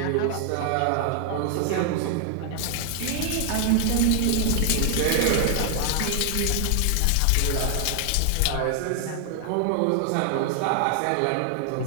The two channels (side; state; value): both; different; correlation 0.00